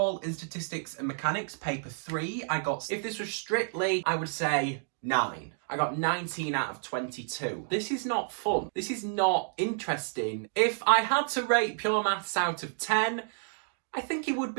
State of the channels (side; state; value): left; silent; digital silence